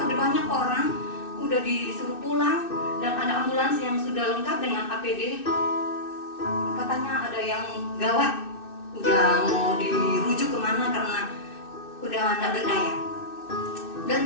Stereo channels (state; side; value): late; right; 2.6 ms